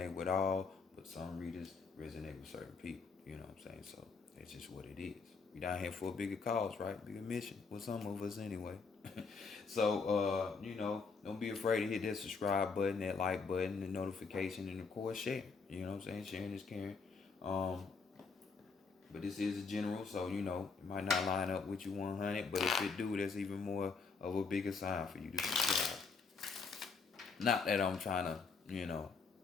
with all, but some readers resonate with certain people. You know what I'm saying? So that's just what it is. We down here for a bigger cause, right? Bigger mission with some of us anyway. So don't be afraid to hit that subscribe button, that like button, the notification, and of course share. You know what I'm saying? Sharing is caring. But this is a general, so it might not line up with you 100, but if it do, that's even more of a bigger sign for you to subscribe. Not that I'm trying to,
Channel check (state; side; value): quieter; right; 4.9 dB